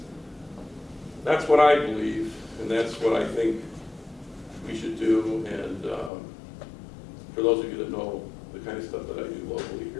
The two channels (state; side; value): drops out; right; at 6.1 s